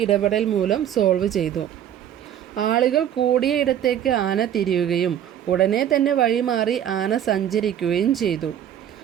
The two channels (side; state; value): left; quieter; 10.1 dB